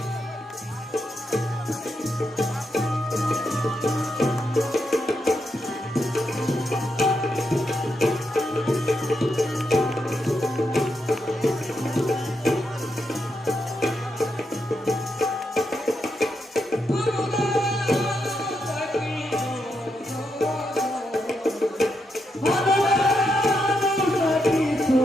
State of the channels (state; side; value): normal; both; correlation 0.82